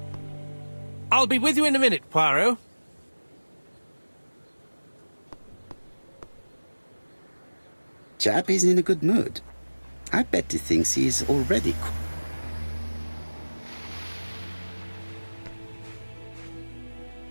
I'll be with you in a minute, Poirot. Chap is in a good mood. I bet he thinks he's already...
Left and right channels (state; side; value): inverted; both; correlation -1.00